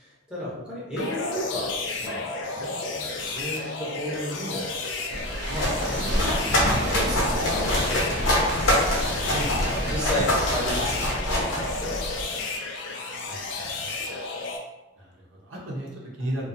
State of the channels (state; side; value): normal; both; correlation 0.21